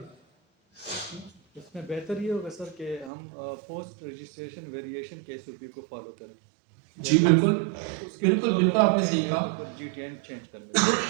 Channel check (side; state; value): left; drops out; at 3.1 s